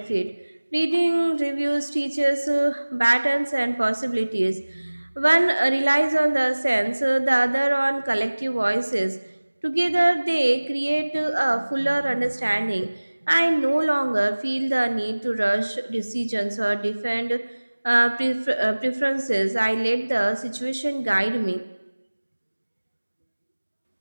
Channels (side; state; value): both; inverted; correlation -1.00